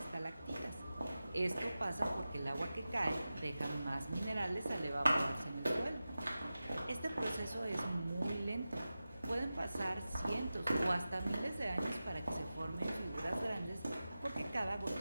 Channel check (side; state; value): both; inverted; correlation -0.94